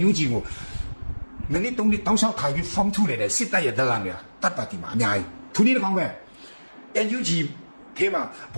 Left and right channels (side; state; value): both; inverted; correlation -1.00